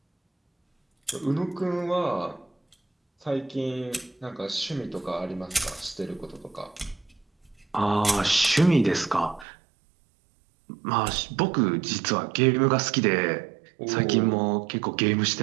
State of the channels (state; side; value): drops out; left; at 9.5 s